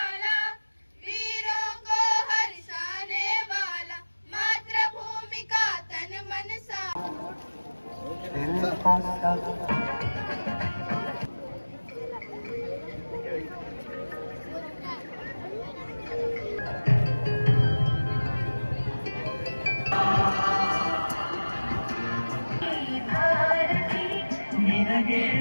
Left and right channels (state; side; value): inverted; both; correlation -1.00